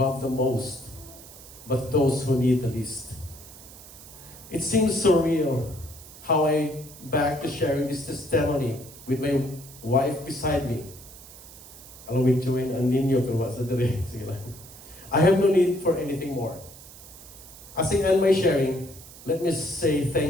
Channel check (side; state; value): right; noise; hiss, 18 dB below the sound